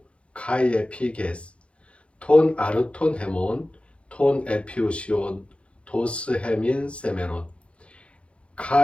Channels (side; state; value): right; late; 0.060 ms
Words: 카이에 피게스 톤 아르톤 헤몬 톤 에피우시온 도스 헤민 세메론